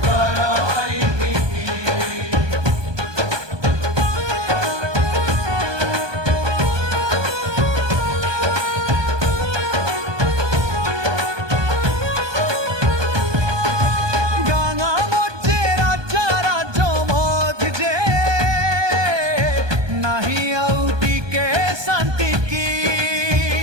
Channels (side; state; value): left; late; 1.2 ms